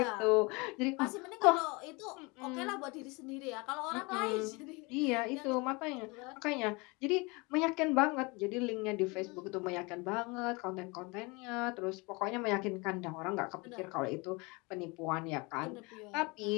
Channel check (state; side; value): quieter; right; 27.1 dB